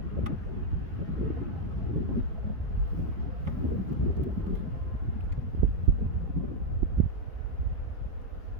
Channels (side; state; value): left; late; 4.3 ms